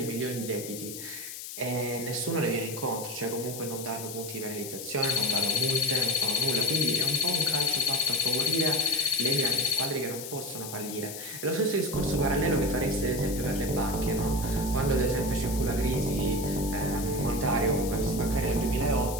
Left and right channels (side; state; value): left; noise; hiss, 9 dB below the sound